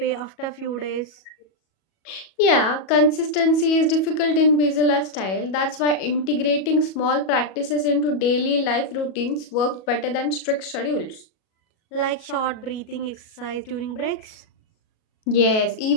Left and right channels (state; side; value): late; right; 37 ms